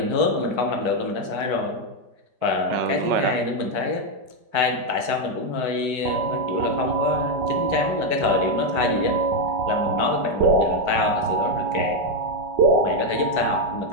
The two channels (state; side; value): late; left; 5.0 ms